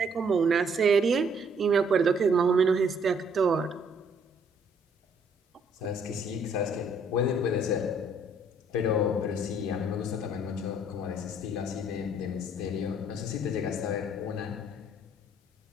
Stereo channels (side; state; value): both; normal; correlation 0.64